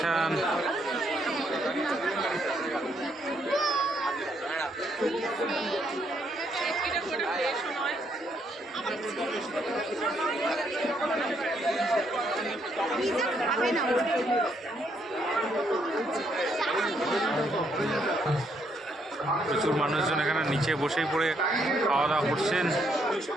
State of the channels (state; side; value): normal; both; correlation 0.73